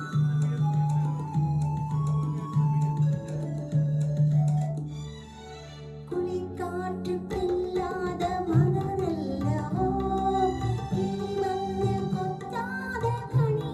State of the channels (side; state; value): both; identical; correlation 1.00